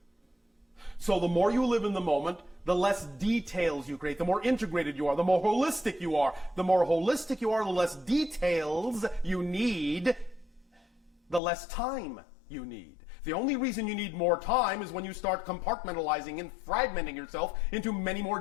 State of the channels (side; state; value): right; drops out; at 11.4 s